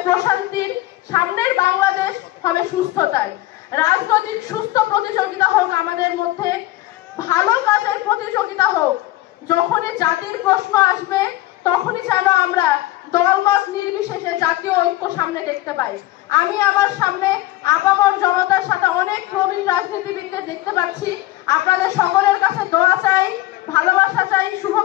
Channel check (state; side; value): quieter; right; 16.8 dB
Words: প্রশান্তির, সামনের বাংলাদেশ হবে সুস্থতার। রাজনৈতিক সুস্থ প্রতিযোগিতা হোক আমাদের মধ্যে, ভালো কাজের প্রতিযোগিতা হোক। যখনই জাতির প্রশ্ন আসবে তখনই যেন আমরা দলমত নির্বিশেষে জাতীয় ঐক্য সামনে দেখতে পাই। আমি আমার সামনে আপামর জনতার সাথে অনেক প্রবীণ রাজনীতিবিদদের দেখতে পাচ্ছি। আপনাদের সকলের কাছে দোয়া চাই, ভালোবাসা চাই,